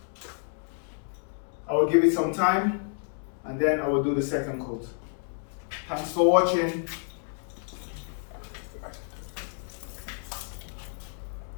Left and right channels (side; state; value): right; silent; 58 dB below the other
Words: I will give it some time, and then I will do the second coat. Thanks for watching.